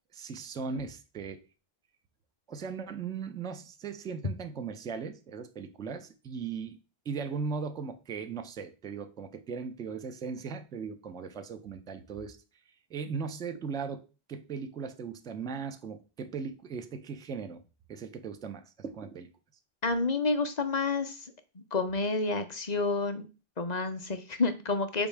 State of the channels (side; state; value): right; late; 1.9 ms